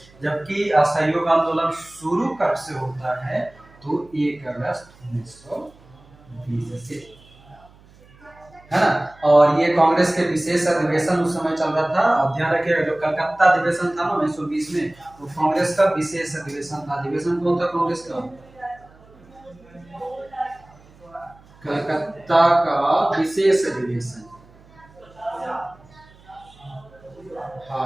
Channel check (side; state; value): right; noise; hum, 26 dB below the sound